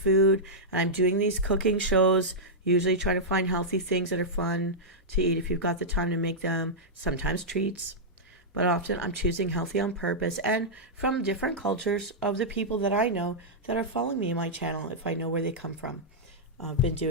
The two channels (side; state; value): both; normal; correlation -0.09